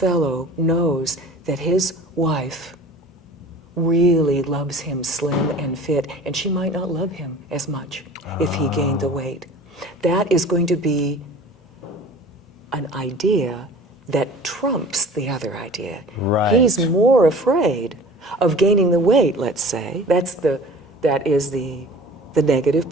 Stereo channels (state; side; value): normal; both; correlation 0.43